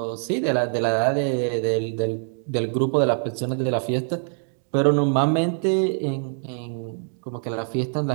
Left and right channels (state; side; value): silent; left; 62 dB below the other